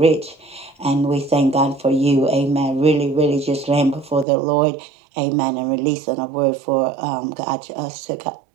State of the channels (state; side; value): drops out; left; at 4.2 s